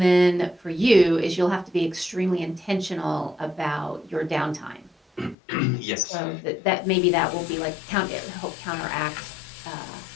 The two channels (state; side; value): drops out; right; at 5.4 s